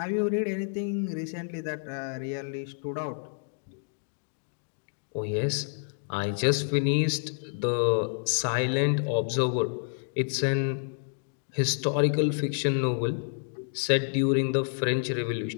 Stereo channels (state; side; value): silent; right; digital silence